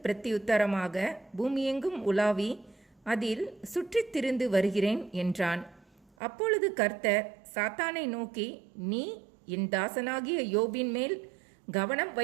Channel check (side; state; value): left; drops out; at 6.1 s